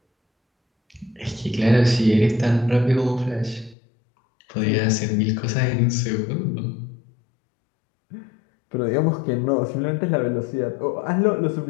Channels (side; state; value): right; drops out; at 3.8 s